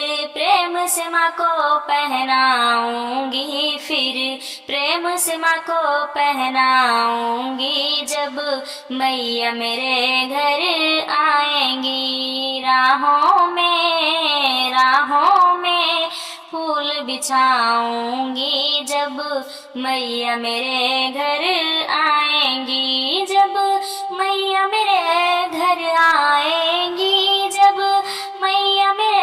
प्रेम से माँ को पहनाऊंगी, फिर प्रेम से माँ को पहनाऊंगी जब मैया मेरे घर आएंगी। राहों में फूल बिछाऊंगी जब मैया मेरे घर आएंगी। जब मैया मेरे घर आएंगी, जब मैया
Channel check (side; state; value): both; identical; correlation 1.00